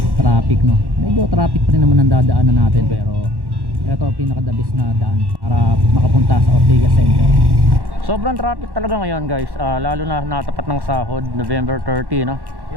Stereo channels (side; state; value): left; late; 1.1 ms